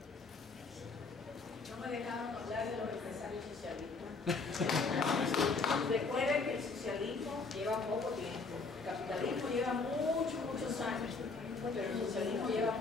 Recuerden que el socialismo lleva poco tiempo, el capitalismo lleva muchos años, pero el socialismo lleva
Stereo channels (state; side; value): quieter; right; 4.2 dB